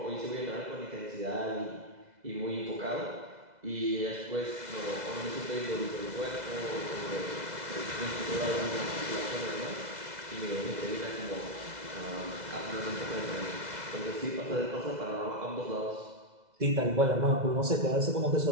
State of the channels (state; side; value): late; left; 2.0 ms